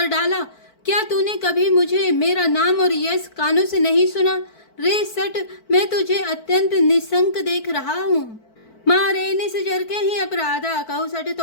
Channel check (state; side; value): late; right; 4.5 ms